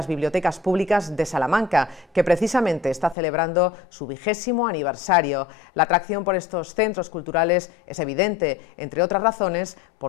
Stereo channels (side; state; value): right; drops out; at 3.2 s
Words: bibliotecas públicas de Salamanca, que precisamente está celebrando su 20º aniversario. La atracción por estos centros culturales es evidente, entre otras razones,